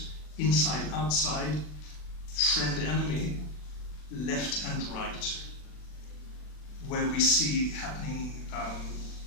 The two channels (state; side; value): late; right; 40 ms